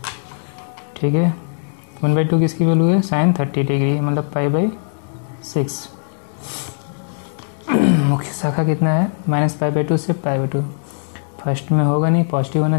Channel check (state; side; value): silent; right; 66 dB below the other